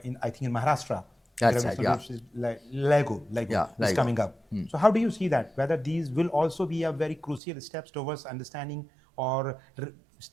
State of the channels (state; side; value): drops out; left; at 7.4 s